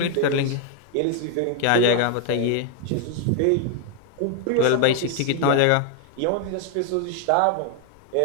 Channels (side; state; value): both; different; correlation 0.00